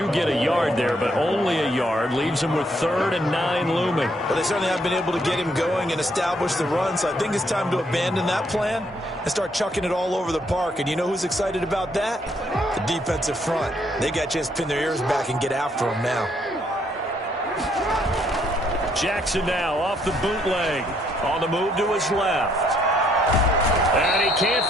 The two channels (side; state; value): both; normal; correlation 0.70